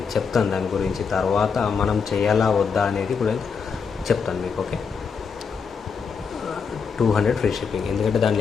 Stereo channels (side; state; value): right; quieter; 5.9 dB